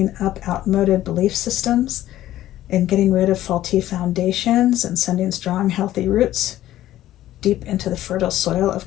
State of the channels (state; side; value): quieter; right; 13.9 dB